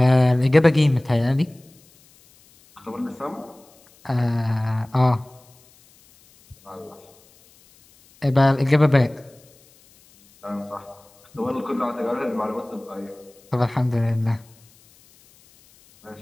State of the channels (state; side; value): noise; left; hiss, 29 dB below the sound